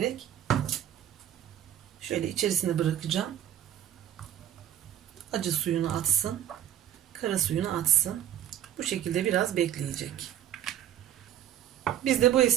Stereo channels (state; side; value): quieter; left; 10.9 dB